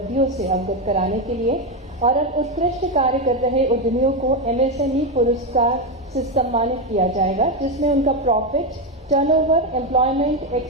से अवगत कराने के लिए। और अब उत्कृष्ट कार्य कर रहे उद्यमियों को एमएसएमई पुरस्कार से सम्मानित किया जाएगा, जिसमें उनका profit, turnover, employment,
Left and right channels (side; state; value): both; normal; correlation 0.09